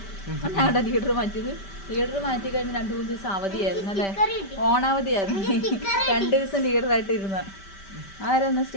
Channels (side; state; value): right; late; 5.1 ms